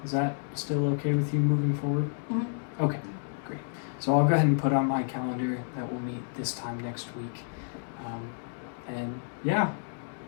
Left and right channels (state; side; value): silent; right; digital silence